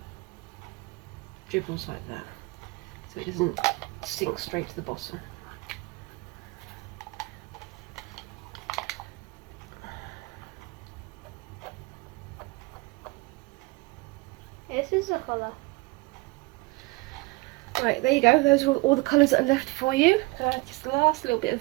dribbles like that, so it doesn't sink straight to the bottom. This is a colour. Right, there you go. Those are all the colours that are left for you. Just the last little bit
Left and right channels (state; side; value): quieter; left; 24.3 dB